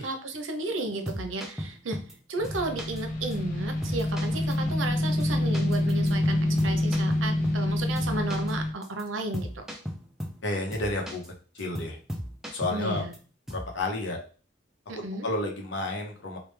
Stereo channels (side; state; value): both; normal; correlation 0.69